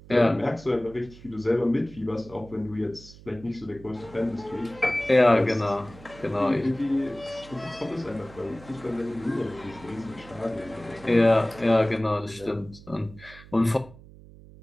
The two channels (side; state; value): right; noise; hum, 20 dB below the sound